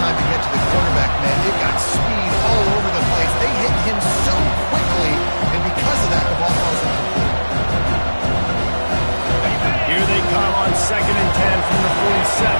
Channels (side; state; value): both; inverted; correlation -1.00